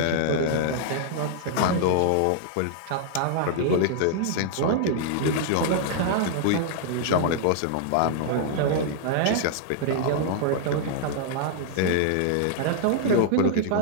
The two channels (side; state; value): both; different; correlation -0.01